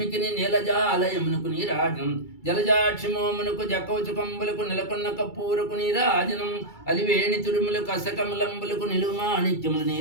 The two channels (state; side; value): late; right; 2.3 ms